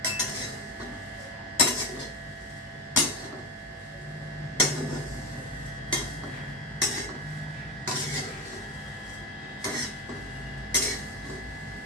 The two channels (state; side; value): normal; both; correlation 0.17